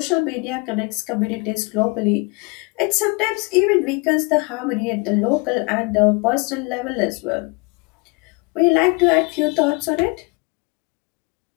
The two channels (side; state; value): right; quieter; 29.3 dB